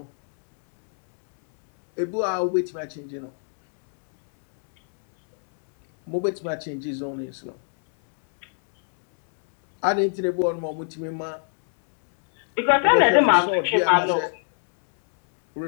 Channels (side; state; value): right; silent; 64 dB below the other